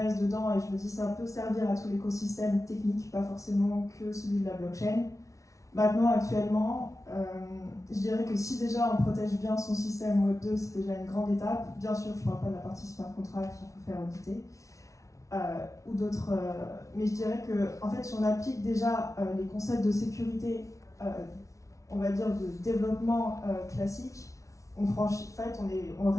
dedans et je me dis ça peut servir à tout l'écosystème technique, pas forcément que celui de la blockchain. Maintenant, actuellement, je dirais que si déjà on protège bien son système Web 2, c'est déjà une grande étape. Bien sûr, je ne parle pas de la partie smart contract qu'il faut faire auditer. Ou d'autres. Mais je dirais que, en fait, si on applique déjà les concepts de sécurité, on va dire de développement classique, on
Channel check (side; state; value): right; late; 0.15 ms